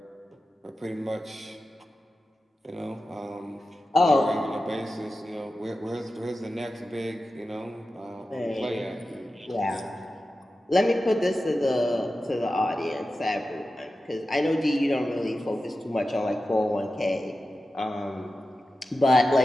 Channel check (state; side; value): normal; both; correlation 0.93